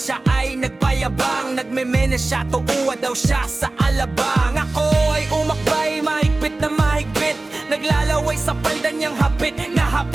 ay nagpayabang. Nagmemena siya, tuuwa daw siya sa alabang. Ako ay umakbay, mahigpit na mahigpit. Naglalaway sa palda niyang hapit na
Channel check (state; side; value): quieter; left; 3.1 dB